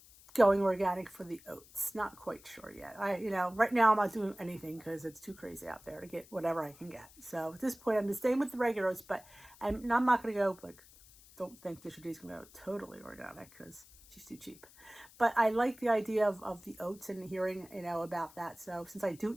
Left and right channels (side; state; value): left; noise; hiss, 23 dB below the sound